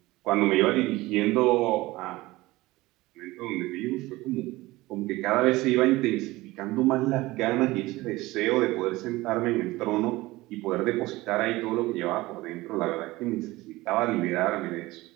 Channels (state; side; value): quieter; left; 19.6 dB